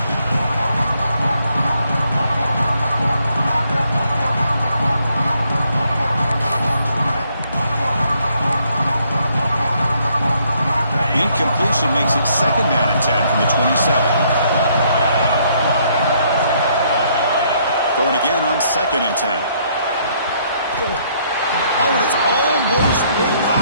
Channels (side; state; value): both; inverted; correlation -0.69